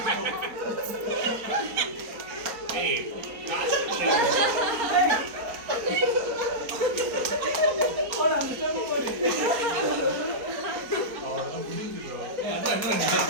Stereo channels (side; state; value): left; late; 4.3 ms